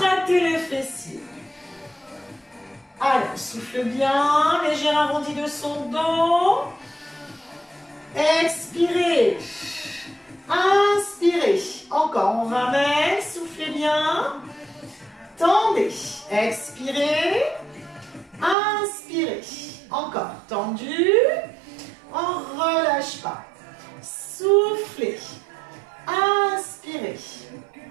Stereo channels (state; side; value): drops out; left; at 18.6 s